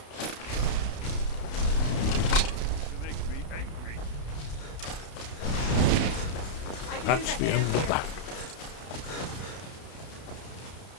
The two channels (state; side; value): late; right; 32 ms